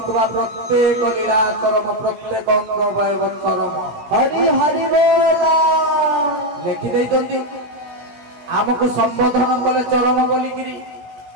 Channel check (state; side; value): late; left; 17 ms